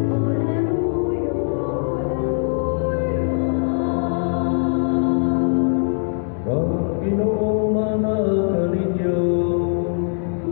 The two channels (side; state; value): right; silent; digital silence